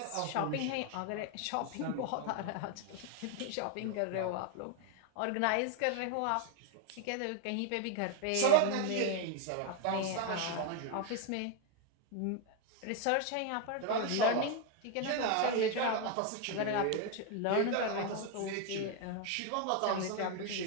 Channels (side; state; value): both; different; correlation 0.01